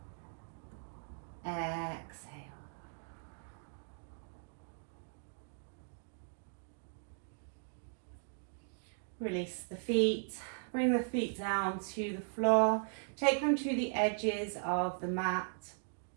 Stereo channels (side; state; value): left; silent; digital silence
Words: Exhale. Release the feet. Bring the feet down to the floor. Take them to the edges of the mat.